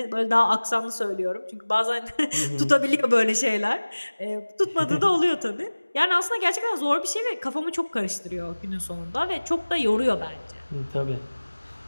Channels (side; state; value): both; inverted; correlation -1.00